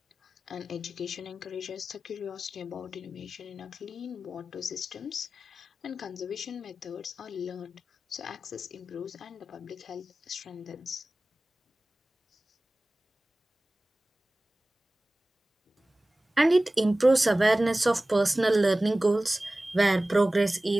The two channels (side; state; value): both; normal; correlation 0.97